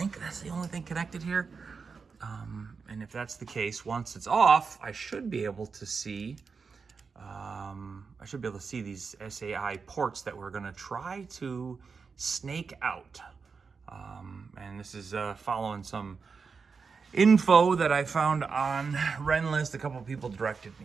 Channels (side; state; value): left; quieter; 5.2 dB